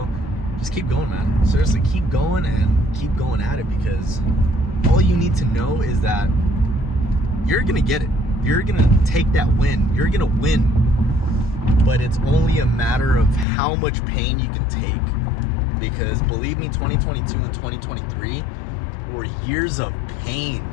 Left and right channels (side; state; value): right; drops out; at 13.5 s